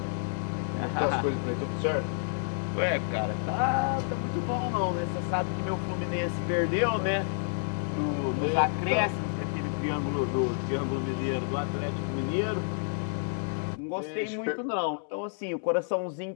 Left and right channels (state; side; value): silent; right; digital silence